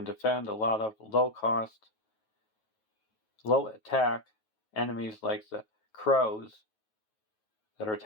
defend a lot of low cost, low attack enemies like the crows that are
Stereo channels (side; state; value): right; late; 9.3 ms